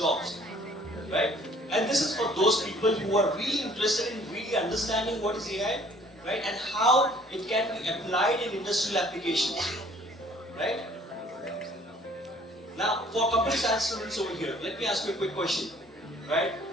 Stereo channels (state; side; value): normal; both; correlation 0.55